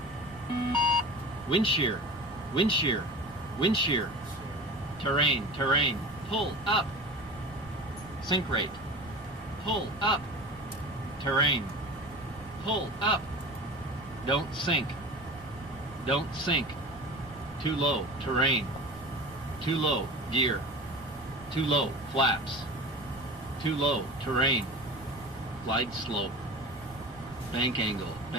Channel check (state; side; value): noise; right; rumble, 19 dB below the sound